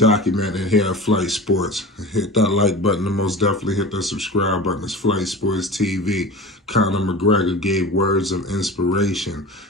here at Flight Sports. Hit that like button and most definitely hit that subscribe button. It's Flight Sports TV. Conor McGregor gave words of inspiration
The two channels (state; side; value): normal; both; correlation 0.33